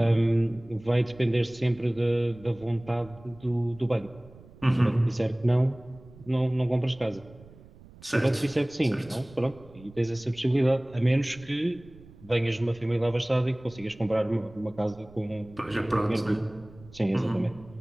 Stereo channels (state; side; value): noise; right; rumble, 22 dB below the sound